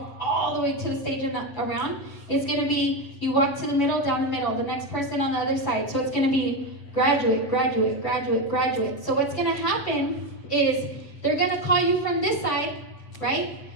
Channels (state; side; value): late; right; 7.5 ms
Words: all the way to the stage and around. It's gonna be, you walk to the middle, down the middle, the next person on the other side. So it's gonna be graduate, graduate, graduate, graduate. So what's gonna happen is they're gonna call you from this side, right?